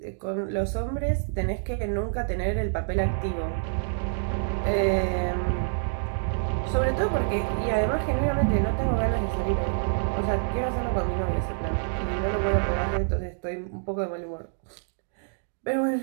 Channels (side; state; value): left; silent; digital silence